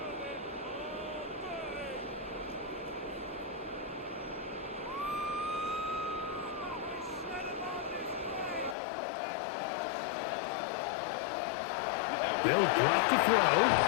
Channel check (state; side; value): drops out; right; at 8.8 s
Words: They'll drop to throw.